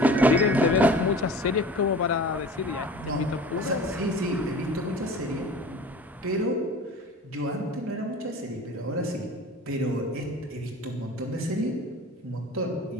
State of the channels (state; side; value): normal; both; correlation 0.41